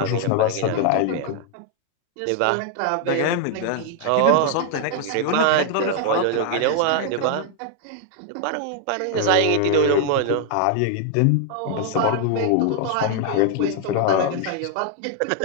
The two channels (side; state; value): both; different; correlation 0.00